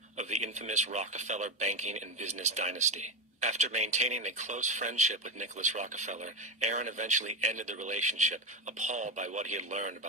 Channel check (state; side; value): normal; both; correlation 0.15